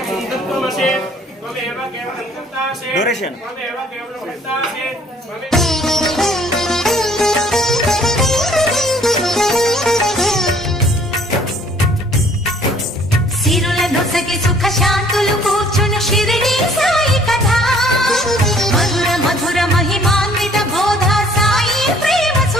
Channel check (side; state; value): both; normal; correlation 0.57